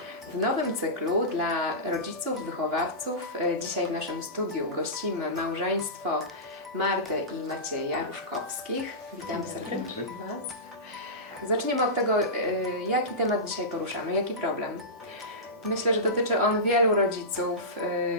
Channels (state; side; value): normal; both; correlation -0.17